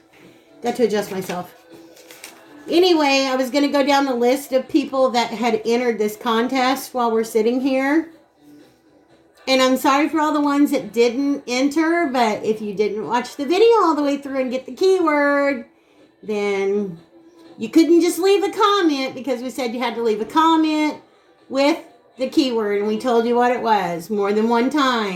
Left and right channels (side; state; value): both; identical; correlation 1.00